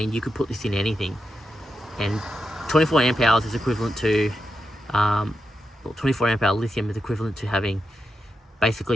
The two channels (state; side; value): normal; both; correlation 0.87